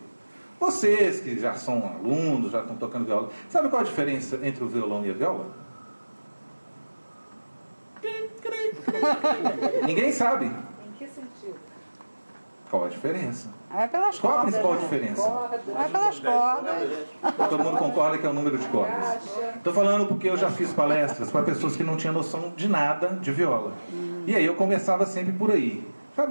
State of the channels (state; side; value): inverted; both; correlation -1.00